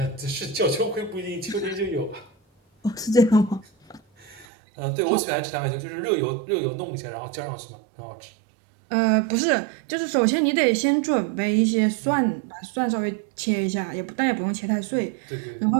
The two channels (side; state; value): left; drops out; at 4.5 s